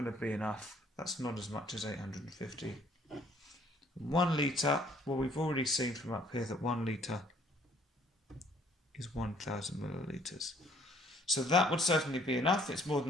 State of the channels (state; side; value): normal; both; correlation 0.61